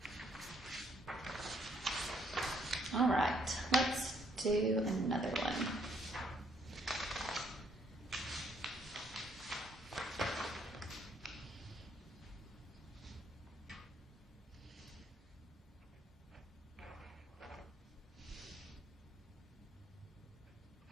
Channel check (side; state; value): both; normal; correlation 0.69